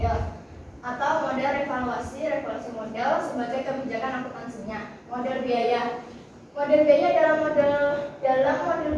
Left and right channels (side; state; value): both; identical; correlation 1.00